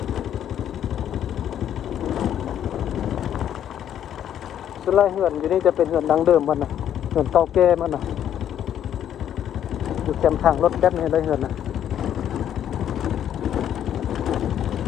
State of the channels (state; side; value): quieter; right; 10.2 dB